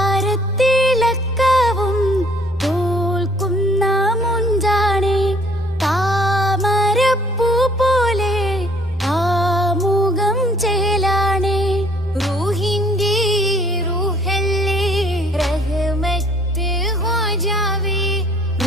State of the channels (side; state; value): both; normal; correlation 0.59